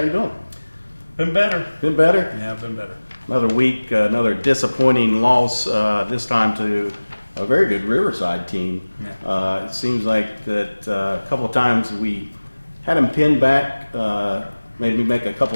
you doing? Been better. Been better? Yeah, been better. Another week, another disappointing loss. This time to a very good Riverside team. Yeah. It seems like that a couple of times we had them pinned back, maybe make a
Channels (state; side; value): inverted; both; correlation -1.00